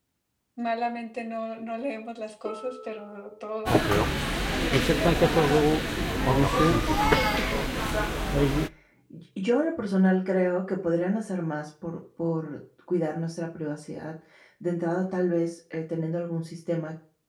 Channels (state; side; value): identical; both; correlation 1.00